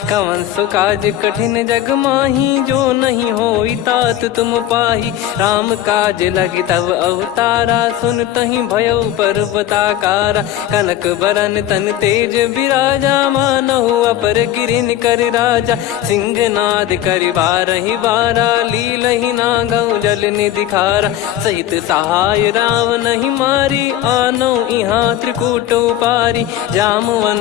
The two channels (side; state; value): right; quieter; 12.4 dB